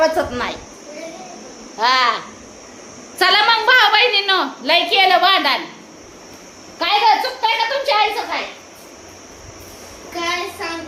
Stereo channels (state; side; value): identical; both; correlation 1.00